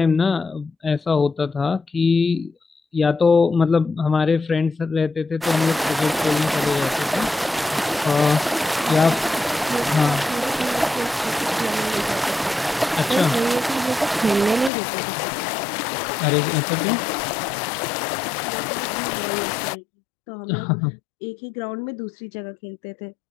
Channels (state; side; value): drops out; right; at 14.7 s